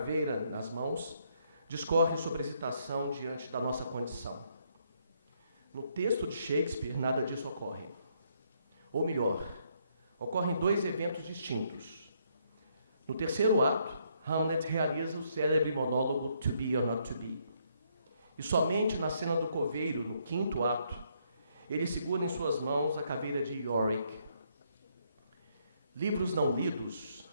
nas mãos, discorre sobre a hesitação diante da nossa condição. No texto de Shakespeare, nada disso ocorre. Ou melhor, ocorrem dois eventos distintos. No terceiro ato, Hamlet realiza o célebre monólogo To Be or Not To Be. E somente na cena do coveiro, no quinto ato, ele segura em suas mãos a caveira de Yorick. Livros não lidos,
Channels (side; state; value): both; inverted; correlation -0.72